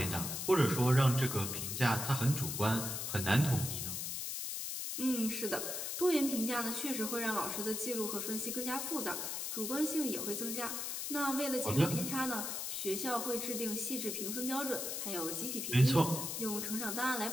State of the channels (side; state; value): left; noise; hiss, 3 dB below the sound